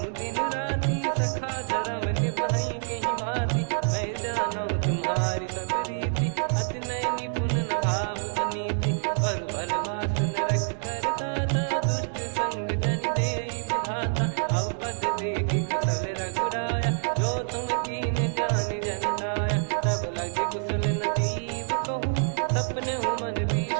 दिन राती सखा धर्म निभई कहीं भांति मैं जानू तुम्हारी सब रीति अति नय निपुण न भाव अनीति पर भल बास नरक करता था दुष्ट संग जन दे विधाता अब पद देखि कुशल रघुराया जो तुम कीन जान जन दाया तब लगे कुशल न जीव कहूँ सपने हूँ मन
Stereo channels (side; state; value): left; silent; digital silence